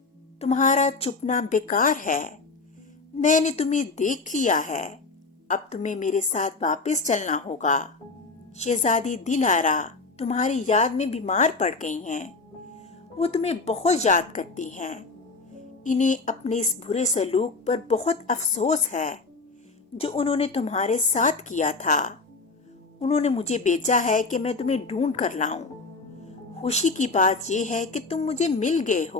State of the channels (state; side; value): quieter; right; 3.9 dB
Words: تمہارا چھپنا بیکار ہے، میں نے تمہیں دیکھ لیا ہے، اب تمہیں میرے ساتھ واپس چلنا ہوگا۔ شہزادی دلارا تمہاری یاد میں بیمار پڑ گئی ہیں، وہ تمہیں بہت یاد کرتی ہیں۔ انہیں اپنے اس برے سلوک پر بہت افسوس ہے جو انہوں نے تمہارے ساتھ کیا تھا۔ انہوں نے مجھے بھیجا ہے کہ میں تمہیں ڈھونڈ کر لاؤں۔ خوشی کی بات یہ ہے کہ تم مجھے مل گئے